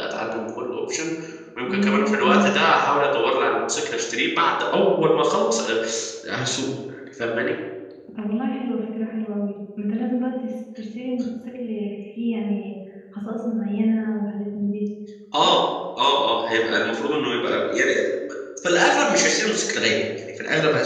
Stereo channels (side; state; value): both; identical; correlation 1.00